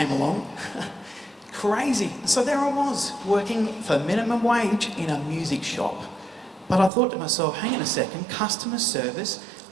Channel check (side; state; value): left; drops out; at 6.9 s